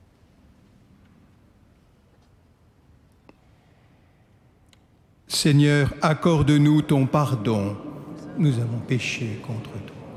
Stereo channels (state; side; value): identical; both; correlation 1.00